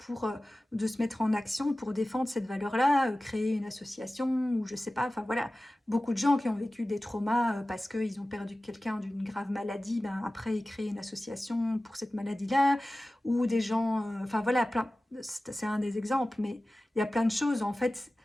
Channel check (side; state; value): both; normal; correlation 0.96